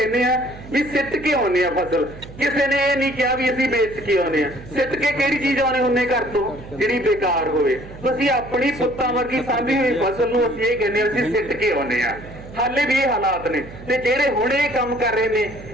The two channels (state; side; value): noise; right; hum, 16 dB below the sound